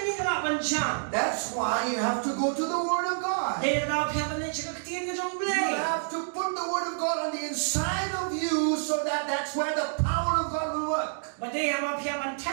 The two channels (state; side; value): silent; left; digital silence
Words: That's why you have to go to the Word of God. You have to put the Word of God on the inside of you so that that's where the power of God will work.